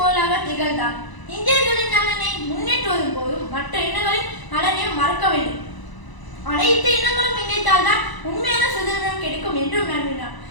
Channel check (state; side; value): late; right; 1.0 ms